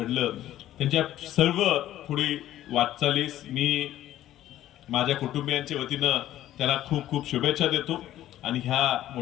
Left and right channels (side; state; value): right; quieter; 13.2 dB